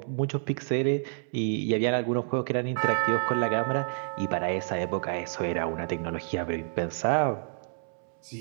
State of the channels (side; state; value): left; silent; 59 dB below the other